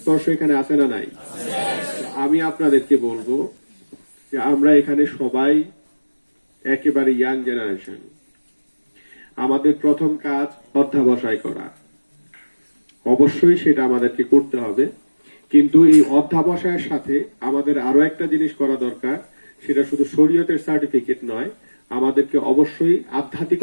এখানে আছে না নাই। আমি আপনাদেরকে বলবো যে আমরা এখানে সবাই একেবারে ইয়াং জেনারেশন। আমাদের প্রথম কাজ অধ্যাবসায় করা, অবশ্যই সেটা আমাদেরকে করতে হবে, কিন্তু এই অধ্যাবসায়ের সাথে আমাদের আরো একটা জিনিস করা দরকার, সেটা শুধু শরীয়তের সার্টিফিকেট নয়, আমাদেরকে অবশ্যই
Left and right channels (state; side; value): inverted; both; correlation -1.00